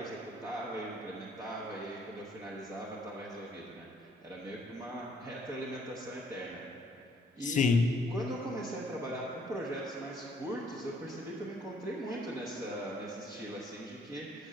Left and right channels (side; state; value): both; normal; correlation 0.64